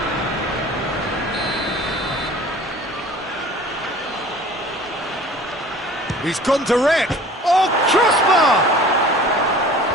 He's gone direct. Oh, crossbar!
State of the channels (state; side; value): normal; both; correlation 0.45